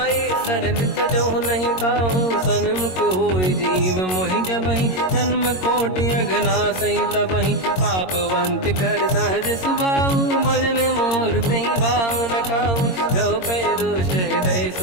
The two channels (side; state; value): right; late; 22 ms